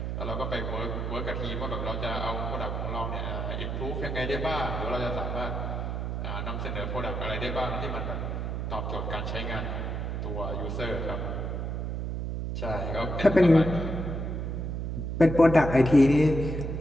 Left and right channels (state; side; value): noise; right; hum, 3 dB below the sound